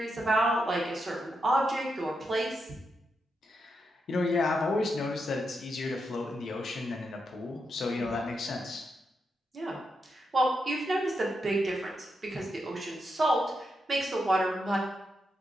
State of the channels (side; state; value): both; normal; correlation 0.84